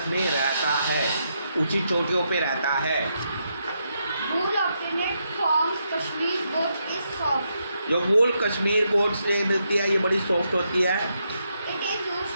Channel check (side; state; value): both; inverted; correlation -0.81